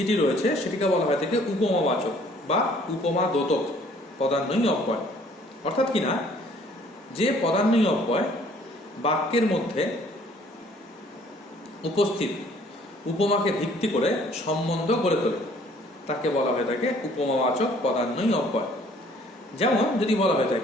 রয়েছে সেটিকে বলা হয় থাকে উপমাবাচক বা উপমা দ্যোতক পদান্বয়ী অব্যয়। অর্থাৎ কিনা যে পদান্বয়ী অব্যয় বাক্যের মধ্যে উপস্থিত উপমাকে ভিত্তি করে সম্বন্ধ গড়ে তোলে তাকে বলা হয়ে থাকে উপমাবাচক পদান্বয়ী অব্যয়। যেমন যদি বলা হয়ে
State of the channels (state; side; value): normal; both; correlation 0.58